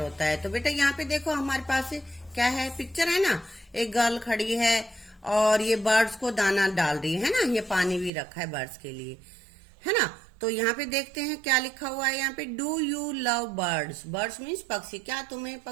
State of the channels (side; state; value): left; drops out; at 8.1 s